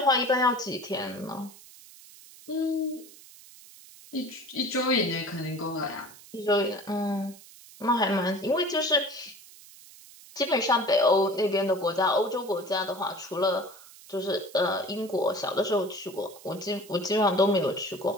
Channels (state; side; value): noise; right; hiss, 20 dB below the sound